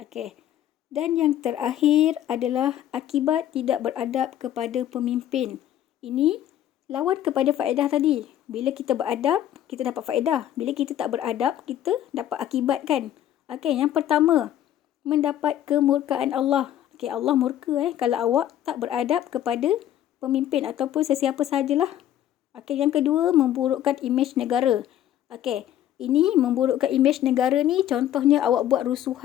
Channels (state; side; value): quieter; right; 11.6 dB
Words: Dan yang terakhir adalah akibat tidak beradab kepada pemimpin. Ini lawan kepada faedah tadi. Bila kita beradab, kita dapat faedah. Bila kita tak beradab, kita dapat akibat kan. Okey, yang pertama, mendapat kemurkaan Allah. Okey, Allah murka kalau awak tak beradab kepada pemimpin ataupun sesiapa sahajalah. Okey, yang kedua, memburukkan imej negara. Okey, ini memburukkan imej negara ni contohnya awak buat